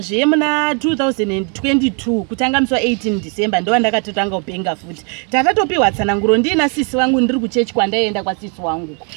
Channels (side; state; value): left; quieter; 37.2 dB